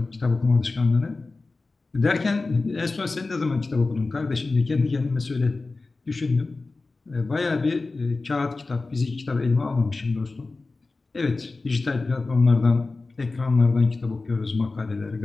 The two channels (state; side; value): quieter; right; 3.6 dB